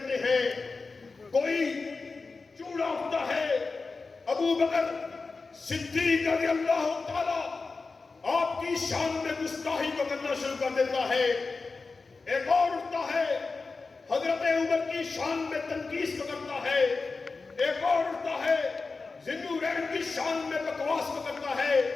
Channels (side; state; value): right; quieter; 4.1 dB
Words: ہیں۔ کوئی چوڑا اٹھتا ہے، ابو بکر صدیق رضی اللہ تعالی آپ کی شان میں گستاخی کو کرنا شروع کر دیتا ہے۔ ایک اور اٹھتا ہے، حضرت عمر کی شان میں تنقیص کو کرتا ہے۔ ایک اور اٹھتا ہے، ذوالنورین کی شان میں بکواس کو کرتا ہے۔